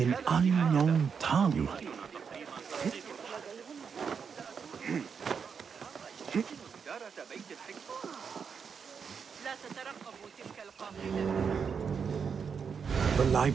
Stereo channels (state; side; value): quieter; left; 6.4 dB